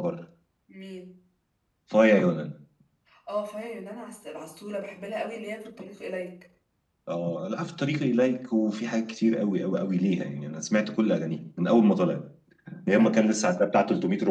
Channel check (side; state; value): both; identical; correlation 1.00